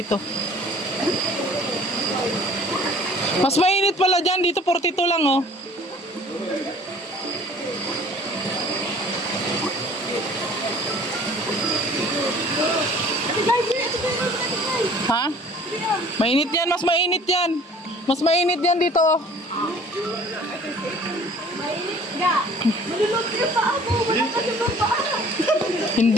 Mas mainit pala dyan, dito 42 lang oh. Ha? Mainit yan, mas mainit yan. Mas mainit yan dito oh. Malulot yung paa mo. Wala ka yung paa.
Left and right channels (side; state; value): both; normal; correlation 0.50